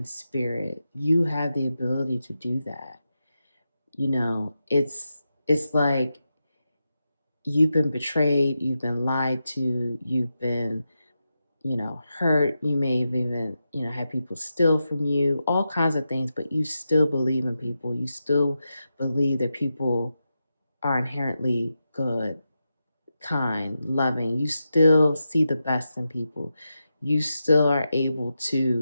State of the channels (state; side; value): inverted; both; correlation -0.89